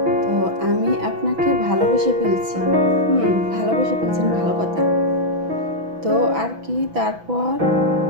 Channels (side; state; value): left; late; 6.1 ms